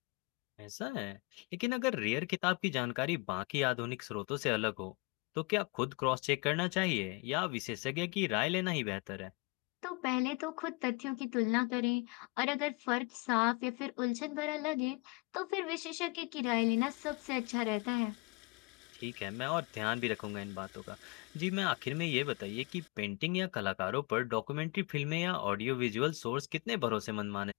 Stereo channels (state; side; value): quieter; right; 26.6 dB